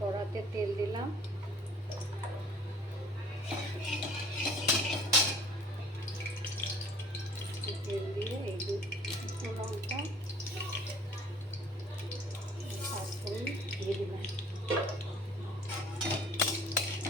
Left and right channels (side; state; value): both; normal; correlation 0.52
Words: তেল দিলাম, তেল দিয়ে এই দুটো লঙ্কা পাঁচফোড়ন দিয়ে দিলাম।